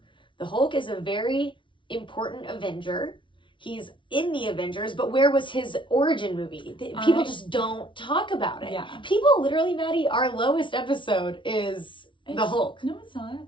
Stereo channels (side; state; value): right; late; 0.24 ms